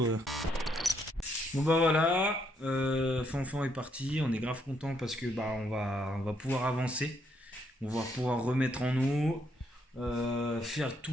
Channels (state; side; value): normal; both; correlation 0.74